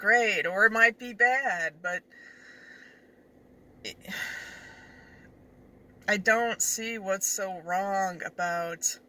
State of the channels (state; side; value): identical; both; correlation 1.00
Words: or it might be bad, but I don't see what's so wrong about,